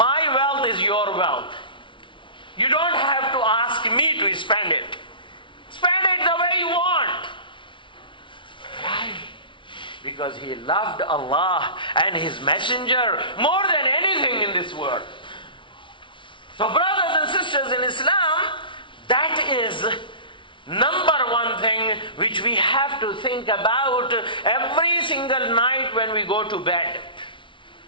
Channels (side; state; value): right; late; 0.24 ms